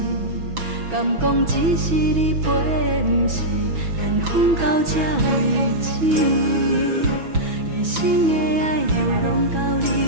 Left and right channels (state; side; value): late; left; 6.1 ms